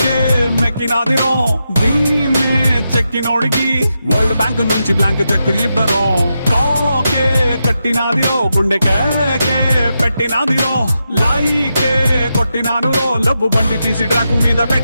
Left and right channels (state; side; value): inverted; both; correlation -0.87